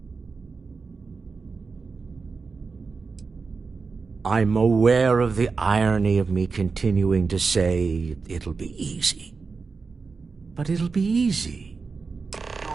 I'm aware of the irony of me continuing to say it'll be easy. But it'll be easy.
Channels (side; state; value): left; quieter; 4.6 dB